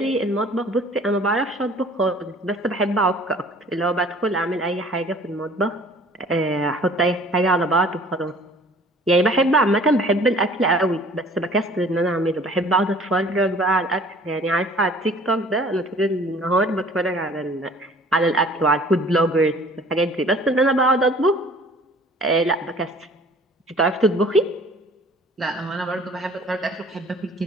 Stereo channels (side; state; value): both; normal; correlation 0.51